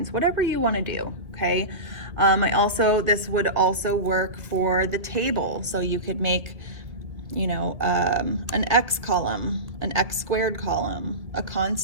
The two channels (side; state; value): left; late; 1.7 ms